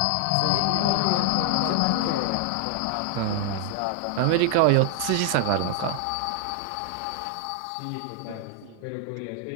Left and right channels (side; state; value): both; different; correlation 0.00